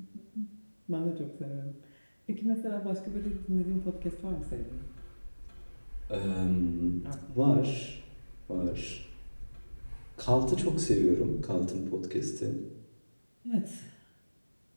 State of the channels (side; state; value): both; inverted; correlation -1.00